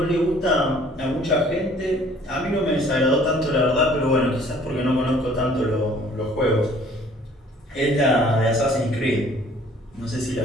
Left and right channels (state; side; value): normal; both; correlation 0.55